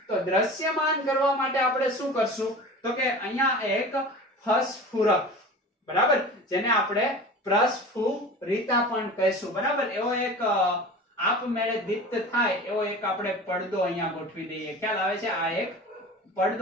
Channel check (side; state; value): both; normal; correlation 0.36